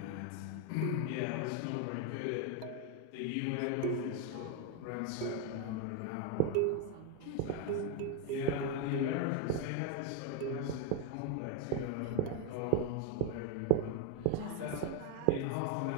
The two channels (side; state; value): both; different; correlation 0.01